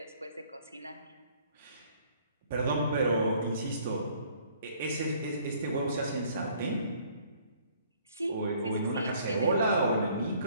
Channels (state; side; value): inverted; both; correlation -0.59